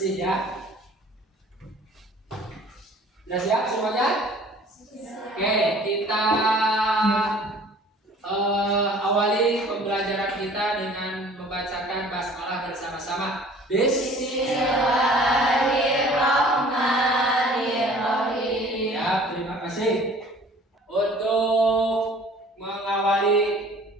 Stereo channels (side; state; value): both; normal; correlation 0.50